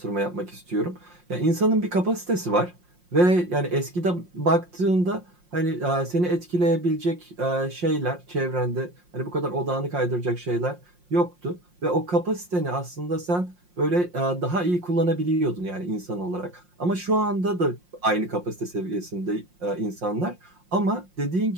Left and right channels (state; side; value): late; left; 5.6 ms